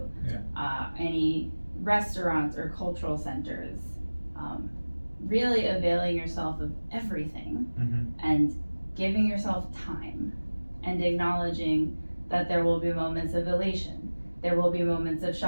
Any restaurants or cultural centers? Really availing yourself of everything and giving yourself time and acknowledging that there will be moments of elation, there will be moments of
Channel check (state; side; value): inverted; both; correlation -1.00